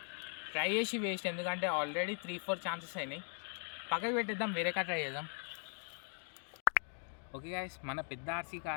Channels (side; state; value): right; silent; 51 dB below the other